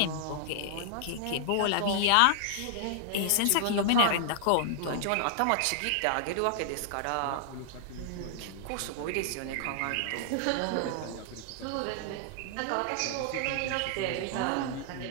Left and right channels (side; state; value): both; different; correlation -0.01